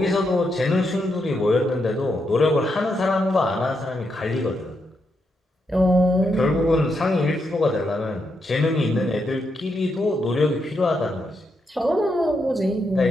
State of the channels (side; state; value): both; normal; correlation 0.82